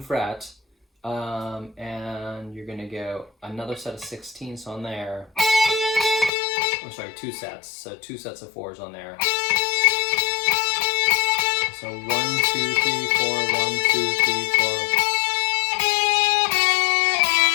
fret, and you're going to go another set of 16ths on there. 2 sets. So 2 sets of 4s on there. So 1, 2, 3, 4, 1, 2, 3, 4.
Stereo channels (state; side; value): drops out; right; at 6.3 s